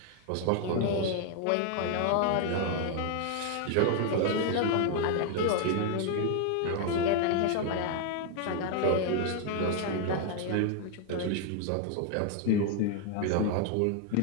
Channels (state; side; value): different; both; correlation 0.00